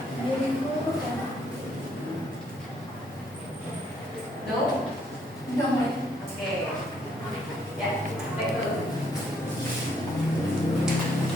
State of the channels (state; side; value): normal; both; correlation 0.69